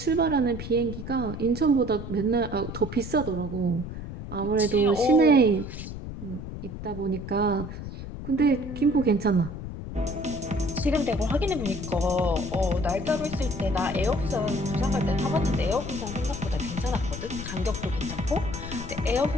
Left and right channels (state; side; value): noise; left; rumble, 9 dB below the sound